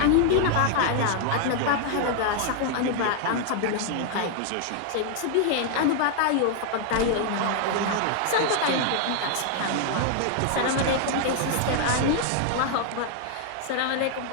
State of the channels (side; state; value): both; different; correlation 0.00